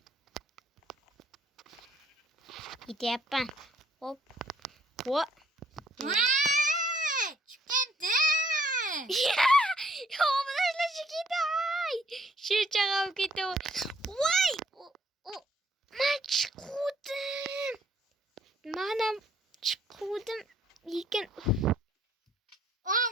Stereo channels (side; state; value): both; normal; correlation 0.64